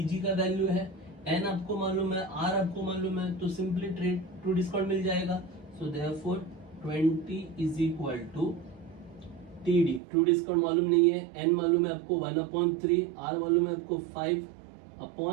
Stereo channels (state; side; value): drops out; left; at 10.0 s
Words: का वैल्यू है, N आपको मालूम है, R आपको मालूम है, तो सिंपली ट्रू डिस्काउंट मिल जाएगा। So therefore 20 is equal to TD। True discount मालूम नहीं है, N मालूम है आपको 1/3, R मालूम है आपको